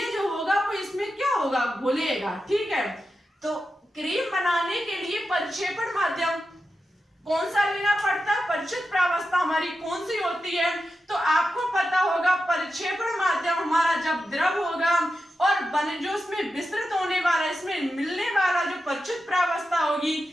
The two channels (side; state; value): both; normal; correlation 0.90